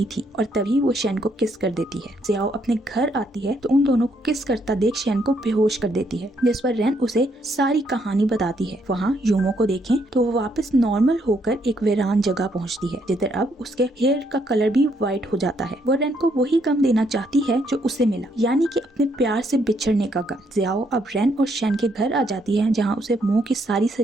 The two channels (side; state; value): both; normal; correlation 0.73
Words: थी और तभी वो शेन को किस कर देती है। जियाओ अपने घर आती है तो उन दोनों को किस करता देख शेन को बेहोश कर देती है, जिस पर रेन उसे सारी कहानी बताती है। वहाँ यूमो को देखें तो वो वापस नॉर्मल होकर एक वीरान जगह पहुँचती है, जिधर अब उसके हेयर का कलर भी व्हाइट हो जाता है। वो रेन को वही गम देना चाहती है जो उसे मिला, यानी कि अपने प्यार से बिछड़ने का गम। जियाओ अब रेन और शेन के घर आ जाती है, जहाँ उसे मुंह की सारी